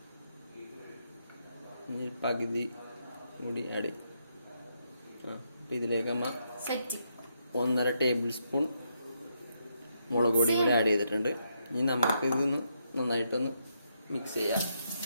ഇനി പകുതി കൂടി ആഡ് ചെയ്യും. ഇതിലേക്ക് 1.5 ടേബിൾ സ്പൂൺ മുളക് പൊടി കൂടി ആഡ് ചെയ്തിട്ടുണ്ട്. ഇനി നമുക്ക് ഇതൊന്ന് നന്നായിട്ടൊന്ന് മിക്സ് ചെയ്യാം.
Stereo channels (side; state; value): both; inverted; correlation -0.79